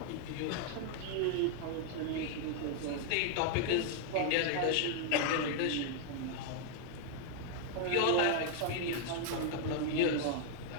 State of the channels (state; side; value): different; both; correlation 0.00